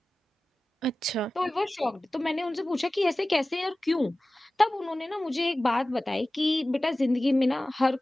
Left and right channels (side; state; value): both; normal; correlation 0.96